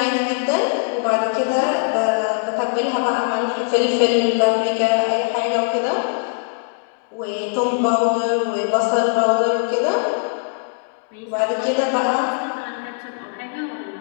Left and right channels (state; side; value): silent; right; digital silence